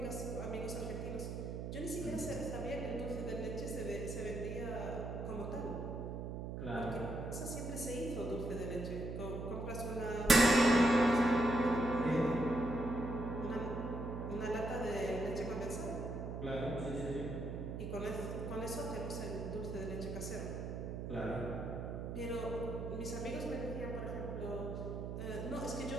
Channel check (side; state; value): right; noise; hum, 5 dB below the sound